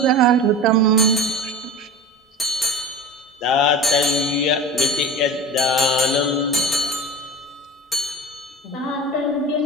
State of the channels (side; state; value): both; normal; correlation 0.34